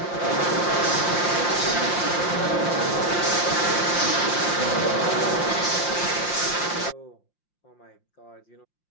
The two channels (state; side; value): late; right; 5.7 ms